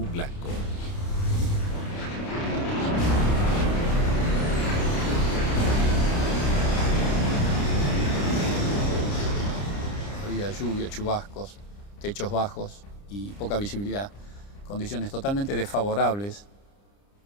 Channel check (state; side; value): late; right; 30 ms